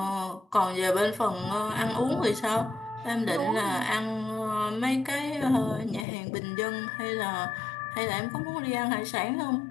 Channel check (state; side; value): drops out; right; at 6.1 s